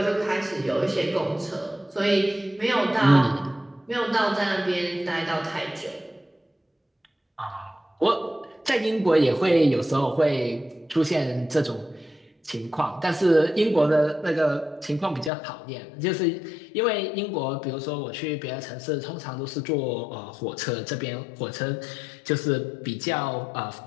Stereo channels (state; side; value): drops out; right; at 15.3 s